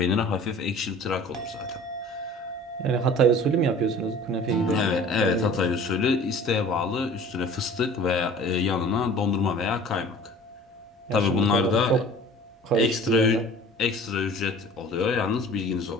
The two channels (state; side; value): normal; both; correlation 0.45